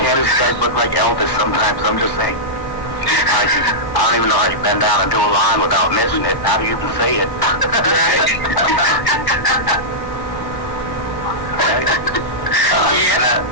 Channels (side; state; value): right; late; 1.0 ms